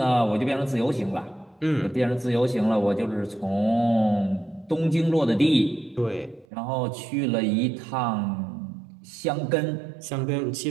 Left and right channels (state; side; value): drops out; left; at 6.5 s